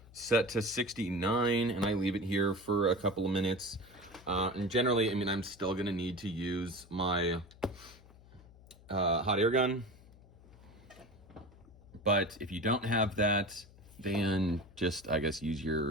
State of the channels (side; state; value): left; noise; hum, 23 dB below the sound